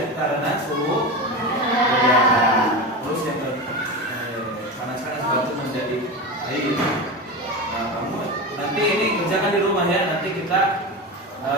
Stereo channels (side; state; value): both; normal; correlation 0.23